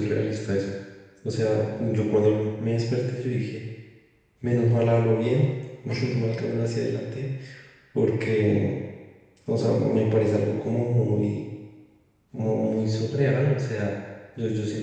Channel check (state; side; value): identical; both; correlation 1.00